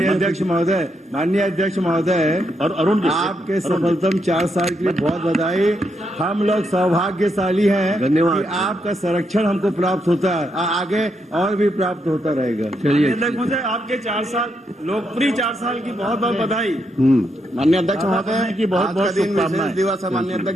अध्यक्ष महोदय और अरुण जी, आपके सफलतम 4 साल के लिए बहुत बधाई। हम लोग सौभाग्यशाली हैं, धन्यवाद। आपका संरक्षण हमको प्राप्त होता है, आगे और भी प्राप्त होता रहेगा। चलिए महोदय, आपके 4 साल लोकप्रिय 4 साल की बहुत बहुत बधाई। माननीय अध्यक्ष महोदय की बहुत बहुत शुभकामनाएं। दिवस है माननीय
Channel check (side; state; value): both; normal; correlation 0.80